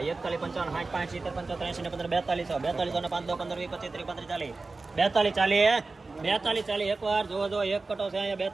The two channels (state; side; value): quieter; left; 3.7 dB